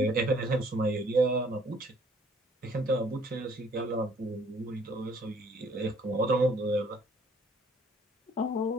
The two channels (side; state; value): both; normal; correlation 0.60